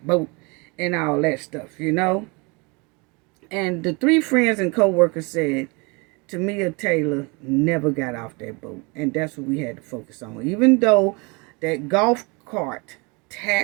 boat and all that stuff, And the three friends and co-workers said Tamia Taylor never got off that boat. And that's what we had to focus on. Even though that golf cart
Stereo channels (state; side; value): quieter; left; 29.2 dB